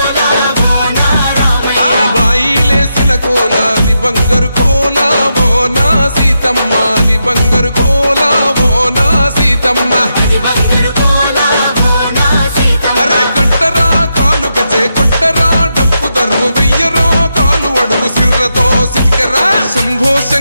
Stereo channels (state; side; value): inverted; both; correlation -0.84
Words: ఆ బాయిలేసిన కోల అది బంగారు కోల ఓ నా సీతమ్మ అది బంగారు కోల ఓ నా సీతమ్మ అరే కట్టరా కాలు గజే కొట్టరా డప్పు దరువు వెయ్యరో కాలు అడుగు సిర్రతో సిటికరా శంభో